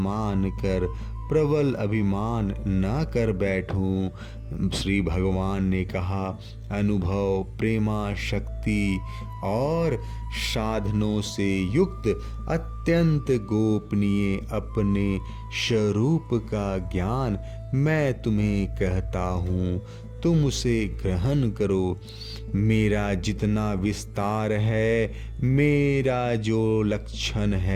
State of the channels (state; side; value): identical; both; correlation 1.00